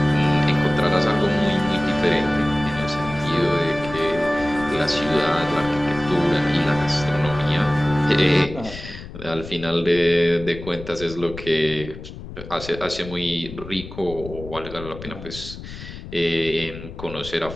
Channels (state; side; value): noise; left; rumble, 13 dB below the sound